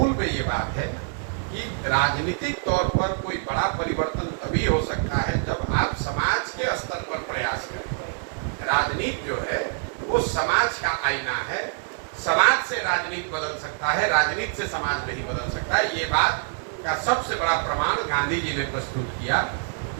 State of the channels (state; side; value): silent; left; 61 dB below the other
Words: में ये बात है कि राजनीतिक तौर पर कोई बड़ा परिवर्तन तभी हो सकता है जब आप समाज के स्तर पर प्रयास करें। राजनीति जो है वो समाज का आईना है। समाज से राजनीति बदल सकता है, राजनीति से समाज नहीं बदल सकता है। ये बात का सबसे बड़ा प्रमाण गांधी जी ने प्रस्तुत किया